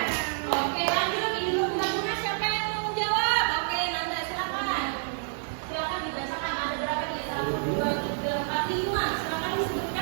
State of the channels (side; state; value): left; silent; digital silence